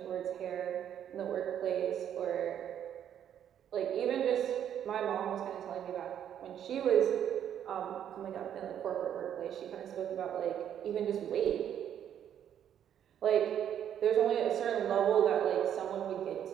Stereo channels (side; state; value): left; quieter; 9.7 dB